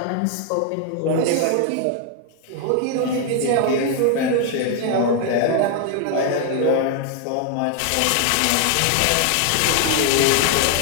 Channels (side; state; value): both; different; correlation 0.00